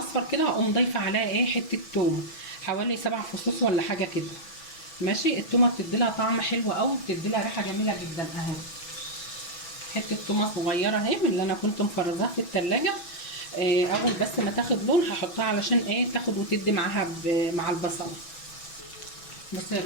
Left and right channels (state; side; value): late; right; 6.1 ms